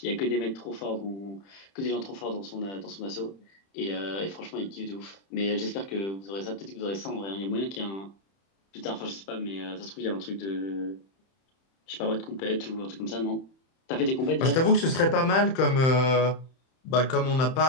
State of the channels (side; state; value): right; late; 31 ms